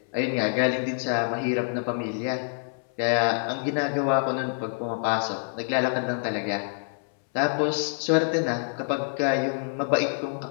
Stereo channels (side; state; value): right; silent; 60 dB below the other